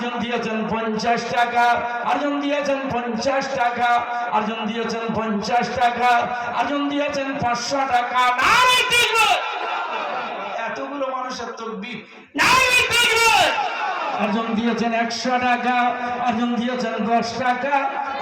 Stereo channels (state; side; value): identical; both; correlation 1.00